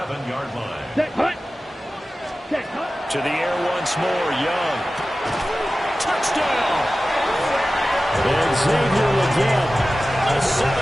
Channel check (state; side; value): normal; both; correlation 0.95